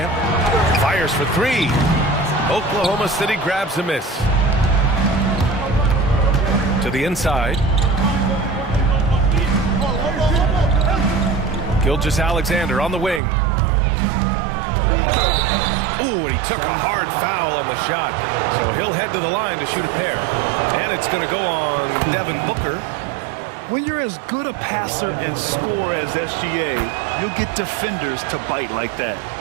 Fires for 3. Oklahoma City grabs a miss. To the inside. Gilgeous-Alexander on the wing. Ooh, and he took a hard foul on the shot. So he'll head to the line to shoot a pair. And it's going to go on Devin Booker. When you're as good a passer and scorer as SGA, you'll get defenders to bite like that.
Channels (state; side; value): drops out; left; at 13.2 s